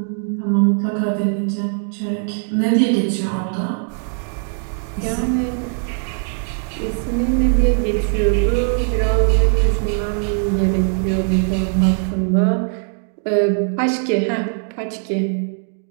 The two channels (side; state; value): left; silent; 58 dB below the other